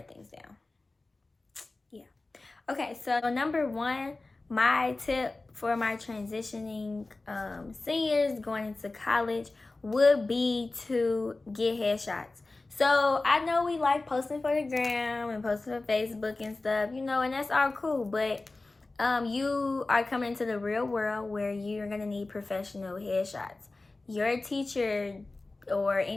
things down. Yeah. Okay, so number one, my tip for my transitioning seniors going into college would be to get headshots. So I know we like posting for the gram and posting for Facebook and stuff, you know, and that's all cool. But you are coming into the real world where you're going to need professional headshots. Your teacher or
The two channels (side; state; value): right; quieter; 3.2 dB